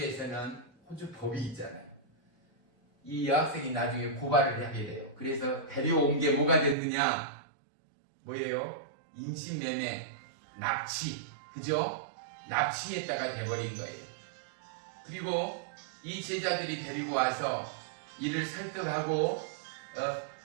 호주 법이 있잖아요. 이 여학생이 나중에 고발을 하게 돼요. 그래서 데려온 게 뭐가 됐느냐? 뭐예요? 인신매매, 납치, 그죠? 납치했다가 돼버린 거예요. 그리고 이 제자들이 데리고 와서 이를 설득하고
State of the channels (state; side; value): drops out; left; at 6.8 s